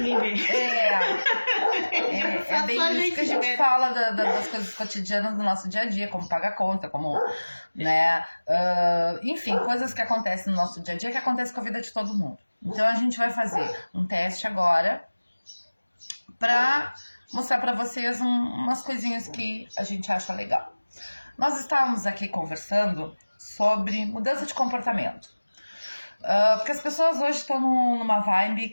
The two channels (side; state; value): both; inverted; correlation -1.00